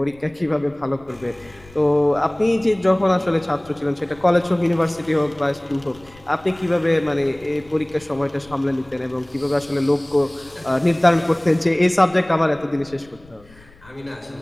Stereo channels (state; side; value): noise; left; rumble, 25 dB below the sound